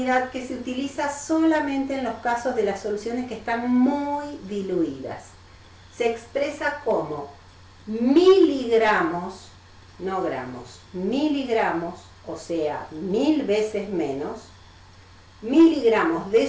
que se utiliza solamente en los casos de las soluciones que están muy diluidas. Se expresa como miligramos, no gramos, miligramos, o sea, 1000 veces menos, miligramos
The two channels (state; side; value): identical; both; correlation 1.00